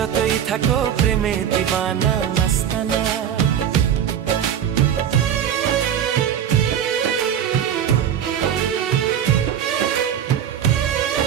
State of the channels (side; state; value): left; quieter; 9.3 dB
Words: থাকো প্রেমে দিবানা মাস্তানা।